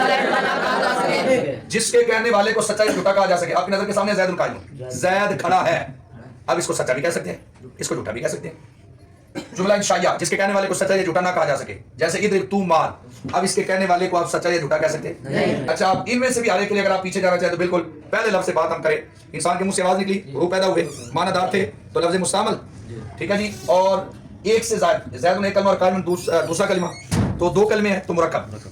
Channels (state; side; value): identical; both; correlation 1.00